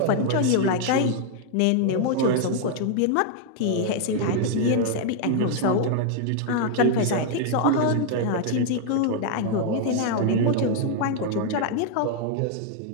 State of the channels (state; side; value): different; both; correlation 0.00